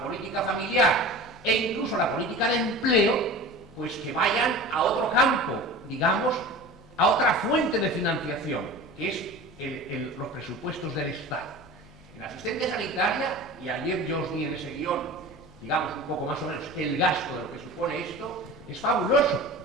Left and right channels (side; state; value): both; normal; correlation 0.36